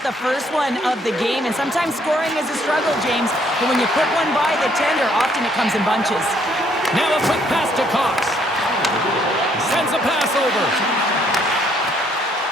the first one of the game. And sometimes scoring is a struggle, James. But when you put one by the tender, often it comes in bunches. Now a quick pass to Cox. Sends a pass over.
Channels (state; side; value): normal; both; correlation 0.67